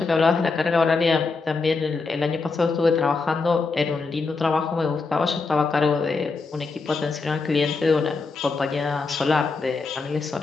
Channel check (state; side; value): quieter; right; 4.2 dB